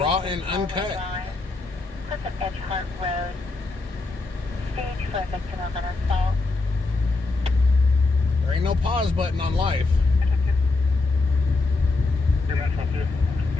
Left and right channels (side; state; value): right; quieter; 3.5 dB